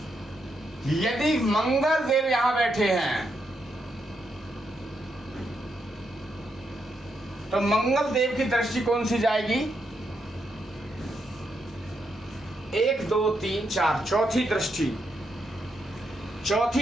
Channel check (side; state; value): both; normal; correlation 0.81